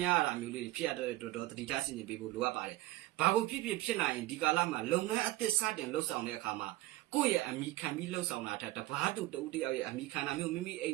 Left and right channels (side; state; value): left; quieter; 17.9 dB